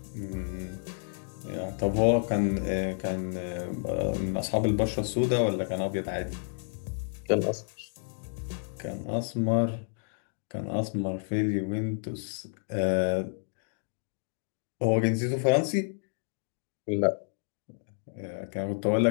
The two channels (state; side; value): silent; right; digital silence